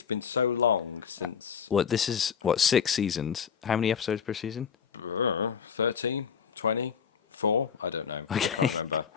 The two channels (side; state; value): right; quieter; 7.0 dB